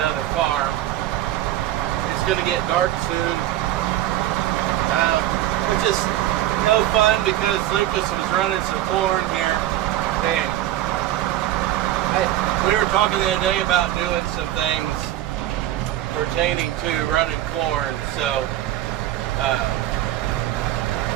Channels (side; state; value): left; quieter; 13.7 dB